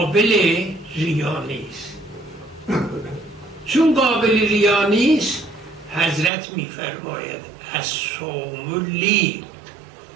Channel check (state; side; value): drops out; left; at 6.3 s